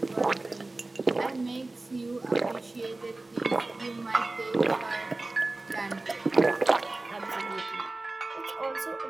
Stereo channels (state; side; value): quieter; left; 3.1 dB